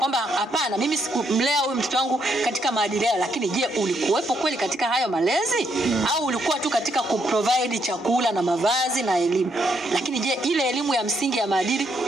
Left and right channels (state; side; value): normal; both; correlation 0.74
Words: hapana, mimi sikumlea huyu mtoto wangu katika maadili yao. Lakini je, ulikuwepo kweli katika hayo malezi? Au ulikuwa tu katika kuprovide chakula na mavazi na elimu? Lakini je, ile elimu ya msingi ya maadili